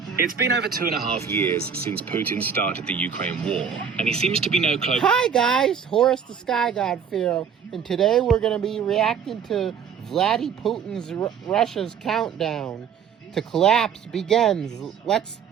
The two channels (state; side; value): quieter; left; 7.2 dB